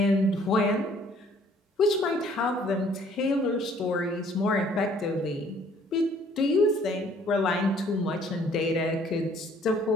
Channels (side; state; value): both; normal; correlation 0.59